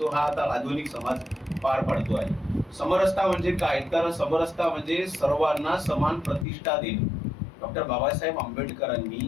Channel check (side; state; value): right; drops out; at 6.5 s